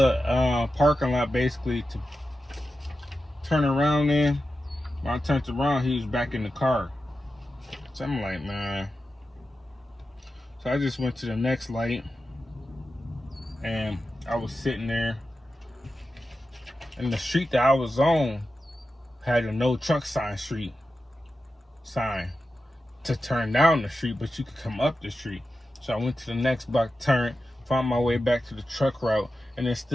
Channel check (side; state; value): both; normal; correlation 0.91